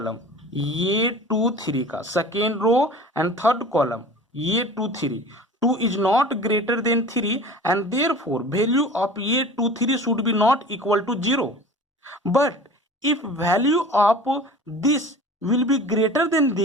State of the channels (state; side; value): normal; both; correlation 0.40